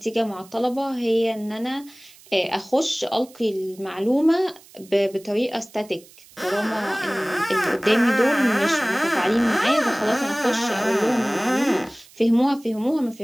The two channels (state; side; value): noise; right; hiss, 24 dB below the sound